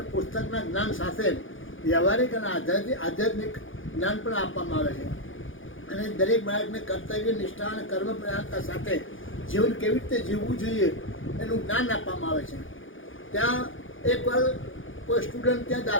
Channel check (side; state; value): right; late; 0.58 ms